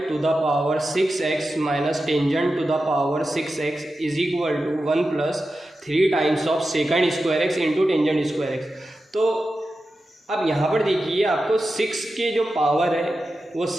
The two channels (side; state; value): both; normal; correlation 0.92